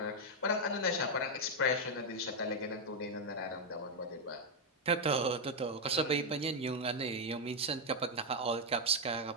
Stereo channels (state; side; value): normal; both; correlation 0.01